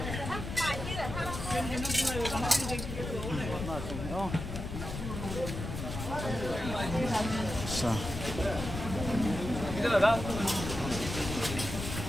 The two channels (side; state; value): left; noise; rumble, 6 dB below the sound